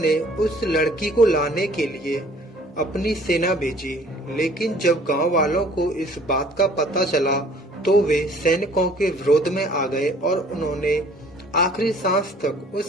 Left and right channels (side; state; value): both; normal; correlation 0.54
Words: उस लड़की को लाने के लिए अपनी सेना भेजी, लेकिन जब गांव वालों को इस बात का पता चला तो वे सैनिकों के विरोध में आ गए और उन्होंने आखिरी सांस तक